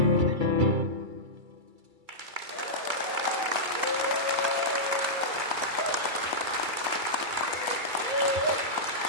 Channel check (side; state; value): left; late; 2.3 ms